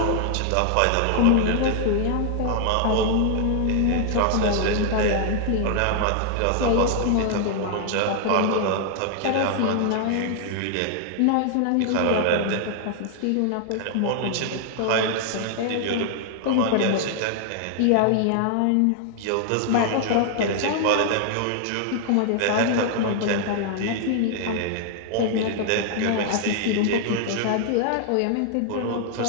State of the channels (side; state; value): both; different; correlation 0.00